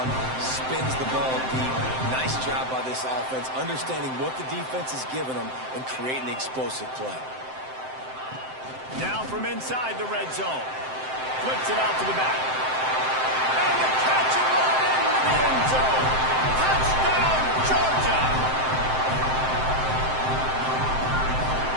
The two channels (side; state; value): left; late; 7.7 ms